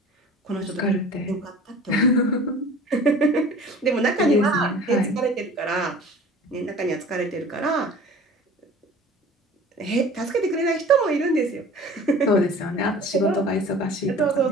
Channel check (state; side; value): normal; both; correlation 0.44